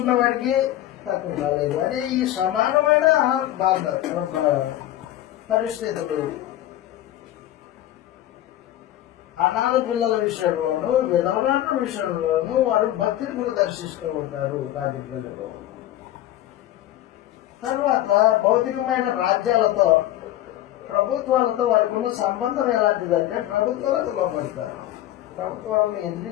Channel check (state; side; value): quieter; right; 13.6 dB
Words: వాడికి తక్కువ కాలేదు అని ఈ సమానమైన పరిస్థితులు. అనాథ పిల్లల విషయంలోనూ, విధవరాల విషయంలోనూ వారు భక్తిని ప్రదర్శిస్తూ ఉంటారు రాజ్య ప్రజలు. తర్వాత భౌతికమైన రాజ్యాలతో, ప్రభుత్వాలతో వారికి ఉన్న సంబంధం ఎలాంటిదంటే ప్రభుత్వాలకు లోపడతారు. ప్రభుత్వాలను